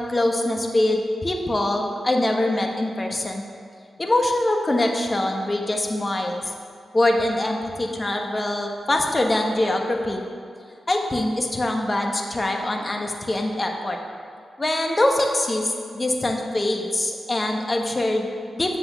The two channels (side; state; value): both; normal; correlation 0.94